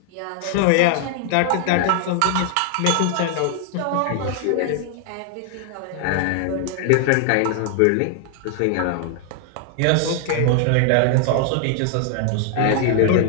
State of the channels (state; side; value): different; both; correlation 0.00